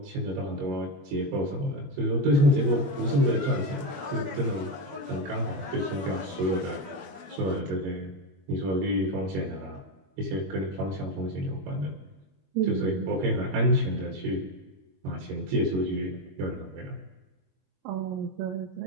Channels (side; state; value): left; late; 21 ms